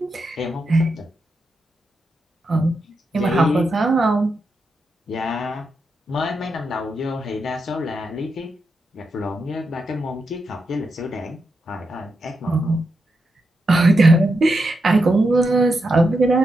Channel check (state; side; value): normal; both; correlation 0.85